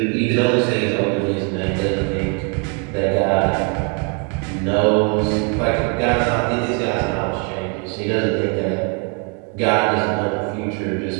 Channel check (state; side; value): quieter; left; 36.6 dB